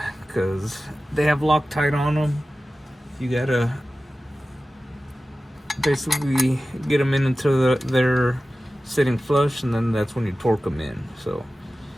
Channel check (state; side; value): normal; both; correlation 0.95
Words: because they have Loctite on them. You gotta basically get them in until they're sitting flush, and then that's when you torque them in. So